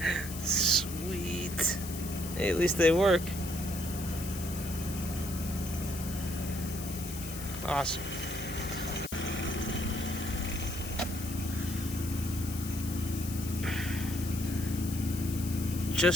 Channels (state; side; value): noise; left; hiss, 10 dB below the sound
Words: Sweet. Hey, at least they work. Awesome.